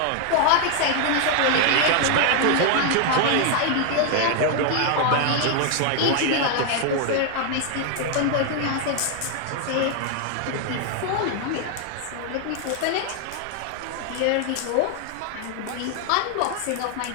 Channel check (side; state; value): both; different; correlation 0.00